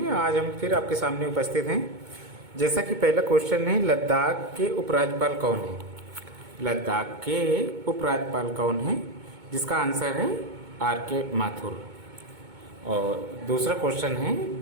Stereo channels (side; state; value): left; late; 2.2 ms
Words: आज हम फिर आपके सामने उपस्थित हैं। जैसा कि पहला क्वेश्चन है, लद्दाख के उपराज्यपाल कौन है? लद्दाख के उपराज्यपाल कौन है? जिसका आंसर है आर के माथुर। और दूसरा क्वेश्चन है,